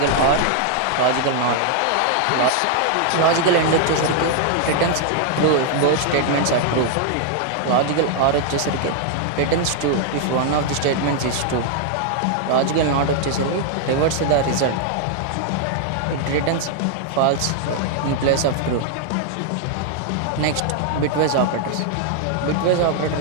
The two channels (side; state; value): both; different; correlation 0.00